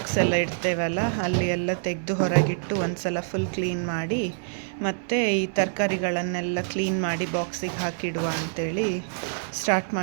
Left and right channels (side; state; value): left; silent; digital silence